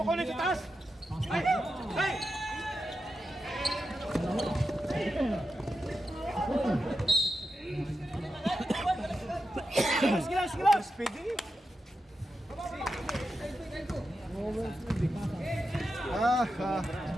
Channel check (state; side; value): normal; both; correlation 0.89